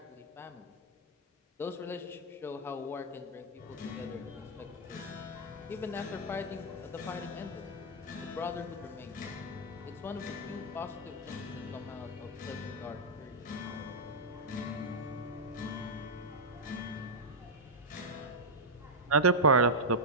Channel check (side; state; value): both; normal; correlation -0.04